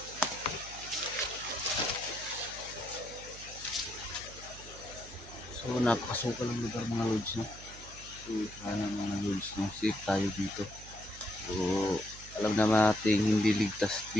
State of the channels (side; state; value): right; noise; hum, 16 dB below the sound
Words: So, napakasukal ng lugar mga lods, no? So, sana mga lods, no? Safe tayo dito. So, alam naman natin hindi ligtas